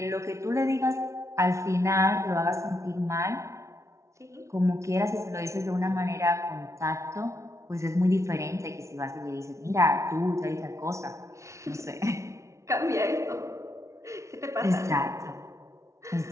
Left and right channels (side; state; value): left; late; 0.14 ms